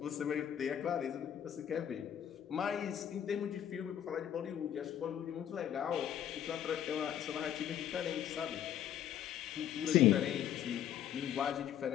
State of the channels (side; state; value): right; quieter; 10.2 dB